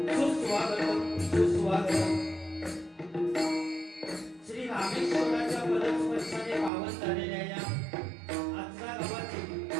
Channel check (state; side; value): drops out; left; at 6.7 s